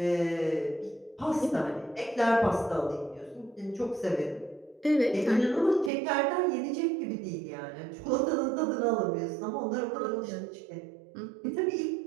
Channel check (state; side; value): drops out; left; at 5.9 s